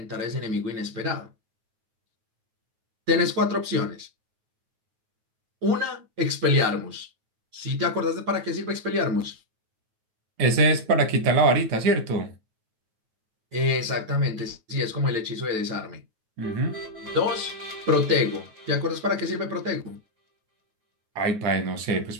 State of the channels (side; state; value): left; late; 9.3 ms